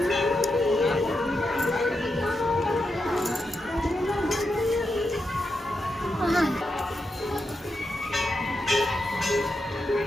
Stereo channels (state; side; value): normal; both; correlation 0.86